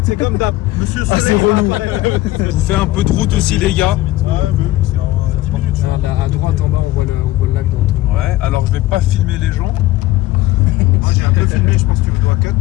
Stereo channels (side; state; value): right; quieter; 16.8 dB